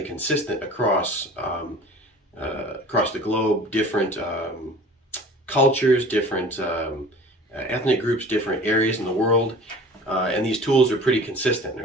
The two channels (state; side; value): normal; both; correlation 0.43